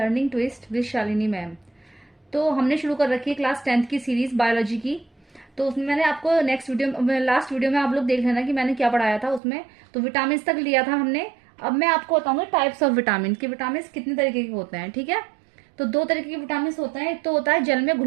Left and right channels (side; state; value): left; drops out; at 9.4 s